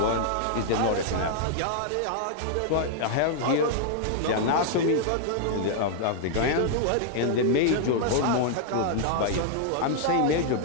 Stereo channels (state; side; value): different; both; correlation -0.01